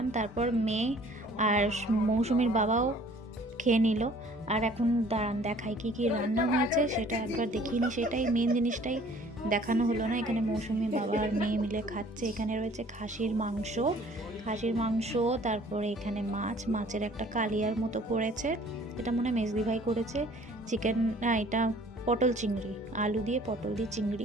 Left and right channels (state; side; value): normal; both; correlation 0.54